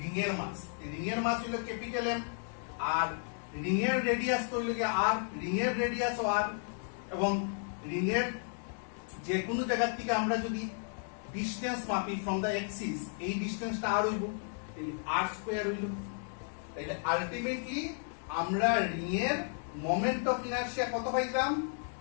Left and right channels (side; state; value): right; silent; 55 dB below the other